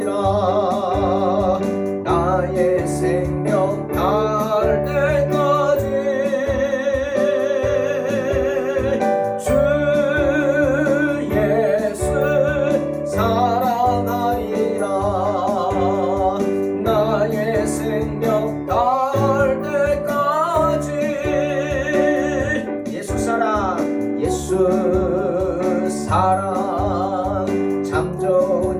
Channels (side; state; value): both; identical; correlation 1.00